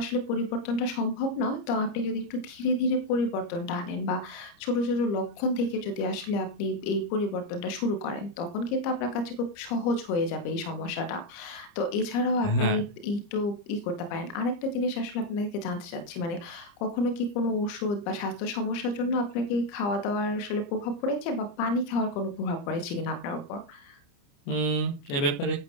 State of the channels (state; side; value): late; right; 30 ms